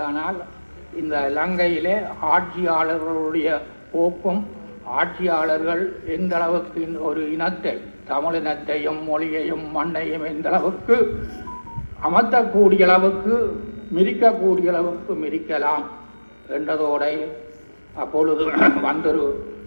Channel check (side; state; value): both; inverted; correlation -1.00